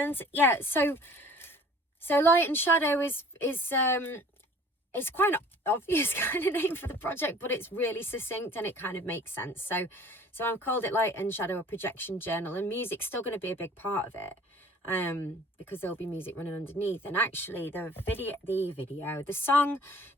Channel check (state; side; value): normal; both; correlation 0.49